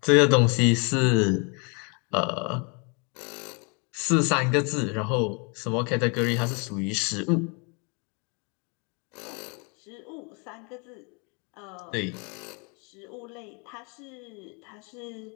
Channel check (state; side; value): quieter; right; 34.2 dB